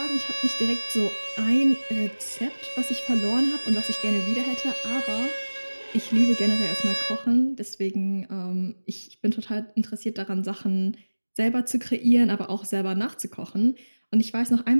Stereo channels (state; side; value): inverted; both; correlation -1.00